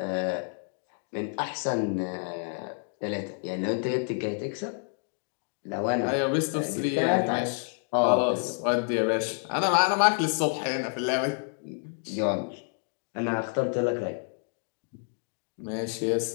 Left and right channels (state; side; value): silent; right; 59 dB below the other